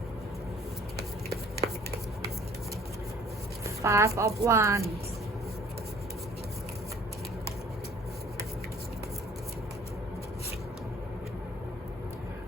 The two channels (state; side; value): normal; both; correlation 0.54